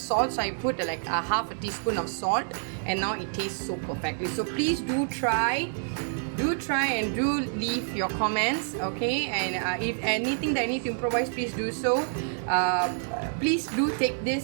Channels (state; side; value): silent; left; 59 dB below the other